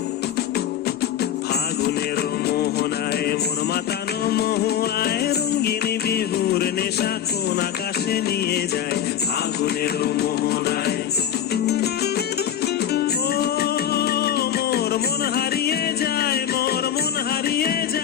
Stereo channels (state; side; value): quieter; right; 9.8 dB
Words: ফাগুনের মোহনায় মন মাতানো মহুয়ায়, রঙ্গিনী বিহুর নেশা কোন আকাশে নিয়ে যায়। ফাগুনের মোহনায় মন হারিয়ে যায়, মোর মন হারিয়ে